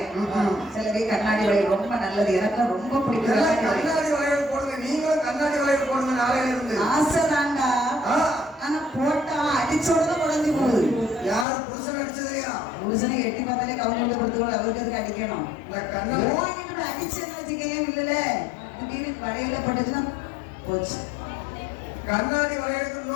சிலவே கண்ணாடி வளையல் ரொம்ப நல்லது, எனக்கு ரொம்ப பிடிக்கும். கண்ணாடி வளையல் போடுங்க, நீங்களும் கண்ணாடி வளையல் போடுங்க. நாளையில இருந்து ஆசைதாண்டா, ஆனா போட்டா அடிச்சோட உடஞ்சி போகுது. யார் புருஷன் அடிச்சதுலையா? புருஷனை எட்டி பார்த்தாலே கவுண்ட் கொடுத்து அவருக்கு அதுக்கு அடிக்கணும். அடிச்சேன்னு வச்சுக்கையே இல்லல, திடீர்னு வளையல பட்டுச்சுன்னா போச்சு. கண்ணாடி வளையலுக்கு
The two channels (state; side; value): drops out; right; at 11.5 s